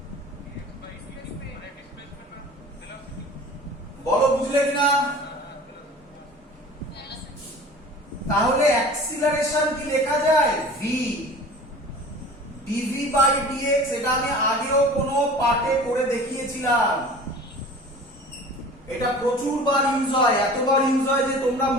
বলো বুঝলে কিনা? তাহলে অ্যাক্সিলারেশন কি লেখা যায়? v dv বাই dx, এটা আমি আগেও কোনো পাঠে করে দেখিয়েছিলাম, এটা প্রচুর বার ইউজ হয়, এতবার ইউজ হয় যে তোমরা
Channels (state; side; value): normal; both; correlation 0.41